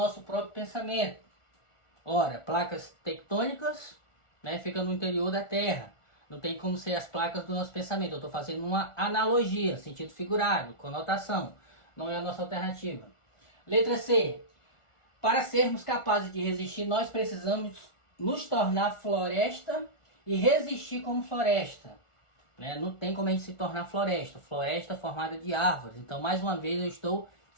próprio pensamento. Ora, placas tectônicas ficam no interior da Terra. Não tem como ser as placas do nosso pensamento. Eu estou fazendo uma analogia, sentido figurado, conotação. Não é a nossa alternativa. Letra C. Para sermos capazes de resistir, nós precisamos nos tornar floresta e resistir como floresta. Não tem como a gente se tornar floresta. Floresta formada de árvores. Então, mais uma vez, eu estou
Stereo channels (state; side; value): late; right; 1.4 ms